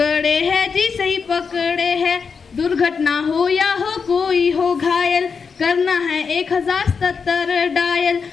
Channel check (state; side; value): quieter; right; 5.6 dB